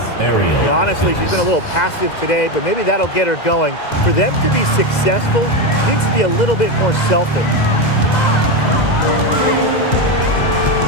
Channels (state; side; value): late; right; 2.0 ms